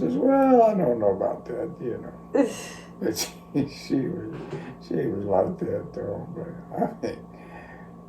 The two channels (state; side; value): identical; both; correlation 1.00